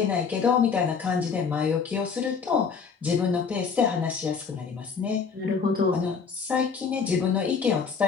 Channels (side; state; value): right; quieter; 5.8 dB